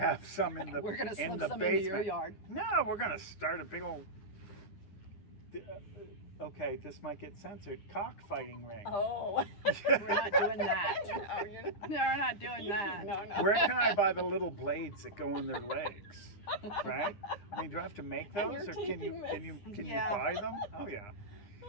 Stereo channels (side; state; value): right; late; 9.9 ms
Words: some in the We're gonna in slip the some basement. into your yard. No, we're gonna start a big old. Okay, this might get censored. Cockfighting ring. Oh. We're not doing that. No, you're not. No, we're not doing that. No, no. Where can I buy the little blades that go in their legs? Right? I mean, do I have to make And those, your or can you teething Yeah. you buy them? Oh yeah.